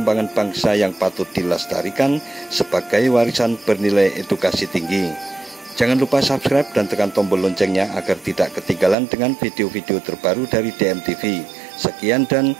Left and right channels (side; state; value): left; drops out; at 9.0 s